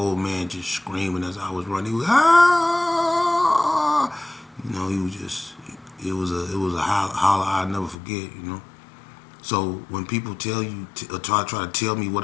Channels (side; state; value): right; drops out; at 8.0 s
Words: man just screaming as I was running. He was, ah! He was just, it was a holler I'll never forget, So when people tell you, try to tell me what